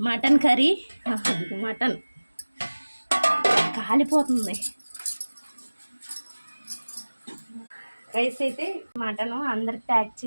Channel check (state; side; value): inverted; both; correlation -1.00